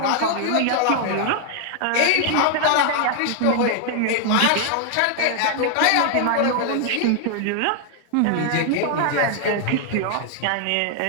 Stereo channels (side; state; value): both; different; correlation 0.00